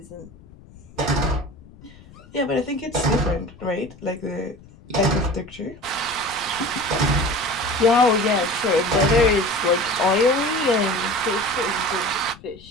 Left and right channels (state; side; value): noise; left; rumble, 22 dB below the sound